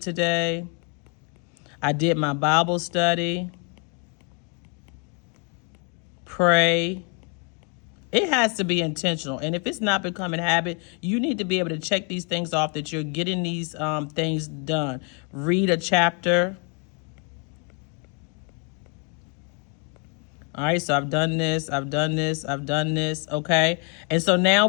I did my Bible study. Pray. It has to be intentional. And if it's not becoming a habit, you need to be able to check these things off that you're getting these things done. Read a chapter. All right, so I've done this, I've done this, I've done this, okay? And so now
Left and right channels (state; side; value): quieter; right; 37.4 dB